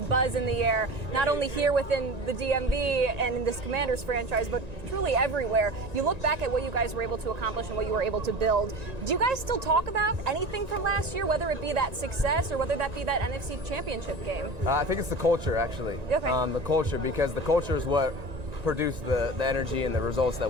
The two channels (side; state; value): left; late; 1.9 ms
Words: buzz in the air, not only here within the DMV and in this Commanders franchise, but truly everywhere. You look back at what you guys were able to accomplish and what you were able to build. Do you guys still talk about anything from last year, whether it be that success or whether that be that NFC Championship game? I think it's the culture, actually. The culture, because the culture is what produce the energy and the results that